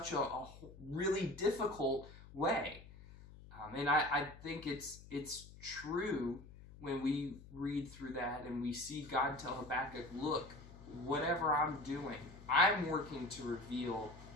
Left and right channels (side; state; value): left; noise; hum, 18 dB below the sound